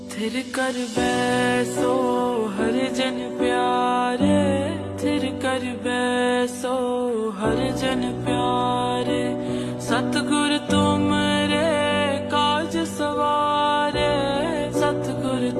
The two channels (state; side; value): identical; both; correlation 1.00